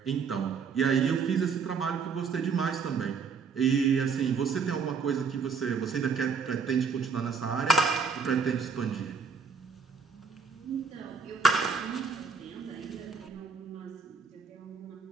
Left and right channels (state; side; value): quieter; left; 5.7 dB